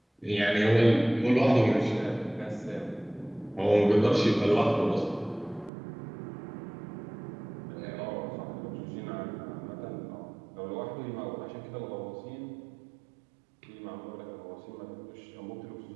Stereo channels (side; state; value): left; drops out; at 5.7 s